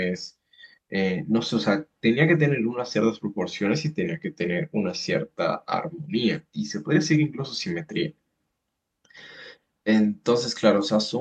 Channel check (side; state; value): both; identical; correlation 1.00